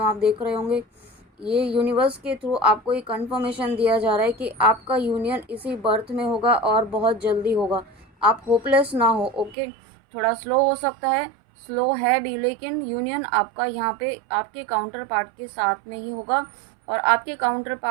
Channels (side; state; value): left; drops out; at 9.6 s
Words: आप देख रहे होंगे ये यूनिवर्स के थ्रू आपको ये कंफर्मेशन दिया जा रहा है कि आपका यूनियन इसी बर्थ में होगा और बहुत जल्दी होगा। आप होपलेस ना हो। ओके, थोड़ा स्लो हो सकता है, स्लो है भी, लेकिन यूनियन आपका यहाँ पे आपके काउंटर पार्ट के साथ में ही होगा और आपके काउंटर